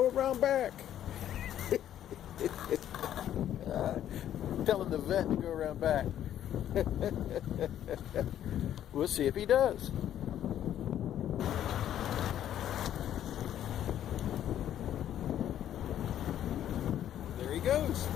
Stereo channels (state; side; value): quieter; right; 11.0 dB